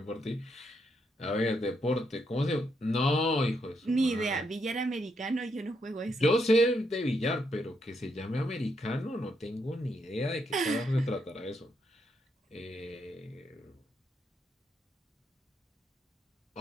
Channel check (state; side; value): normal; both; correlation 0.78